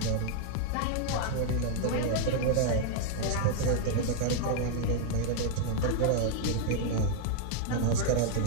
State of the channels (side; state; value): both; different; correlation 0.00